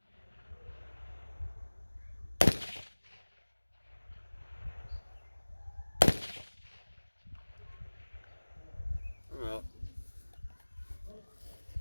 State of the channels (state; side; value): inverted; both; correlation -1.00